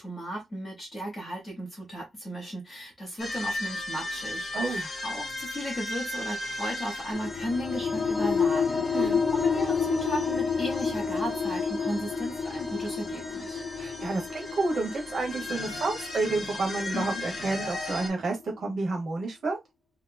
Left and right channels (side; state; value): both; normal; correlation 0.83